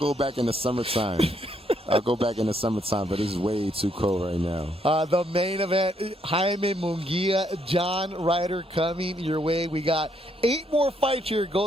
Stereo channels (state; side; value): normal; both; correlation 0.73